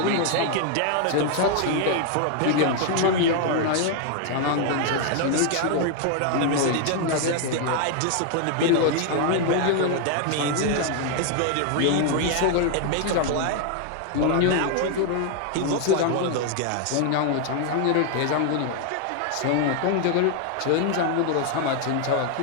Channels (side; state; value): both; different; correlation 0.00